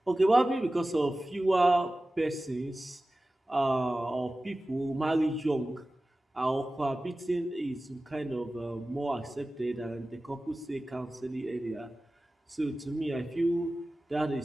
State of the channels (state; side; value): normal; both; correlation 0.96